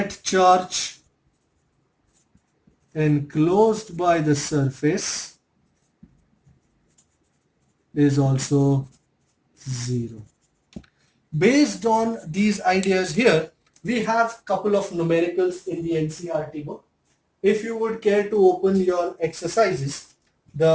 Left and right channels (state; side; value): identical; both; correlation 1.00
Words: charge enclosed by the surface is also 0. Based on these ideas here, we have couple of numericals in the NCERT book. If you would care to open your exercises,